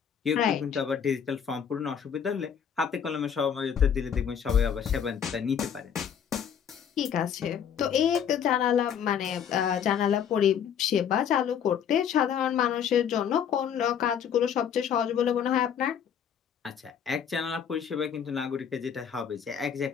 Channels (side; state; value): right; quieter; 8.1 dB